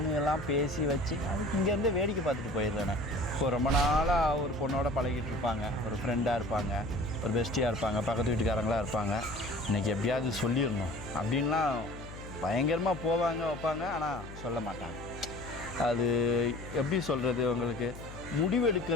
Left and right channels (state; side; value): noise; left; hum, 13 dB below the sound